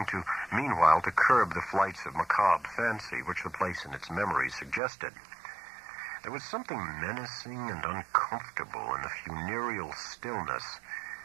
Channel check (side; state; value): left; drops out; at 4.8 s